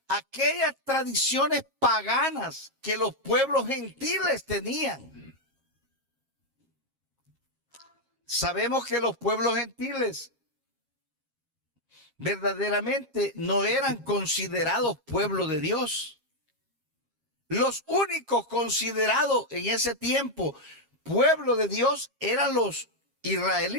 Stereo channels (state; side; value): late; left; 7.4 ms